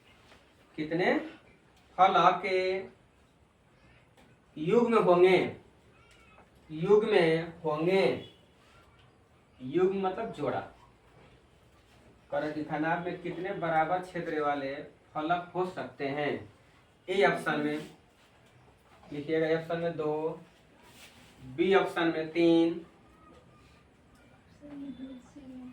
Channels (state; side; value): identical; both; correlation 1.00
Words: युग्म होंगे? युग्म मतलब जोड़ा। कर घनाभ में कितने बराबर क्षेत्र वाले फलक हो सकते हैं? ए ऑप्शन में लिखिएगा, ए ऑप्शन में 2, बी ऑप्शन में 3,